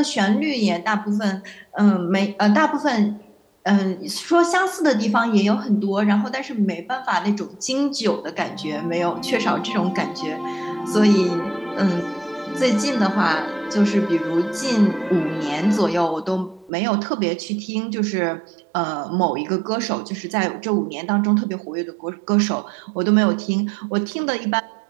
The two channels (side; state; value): left; drops out; at 16.7 s